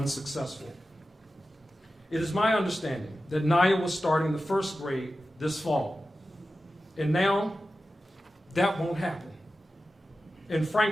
It is my understanding that Nyiah was starting the 1st grade this fall, and now that won't happen. And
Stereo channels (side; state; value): both; normal; correlation 0.93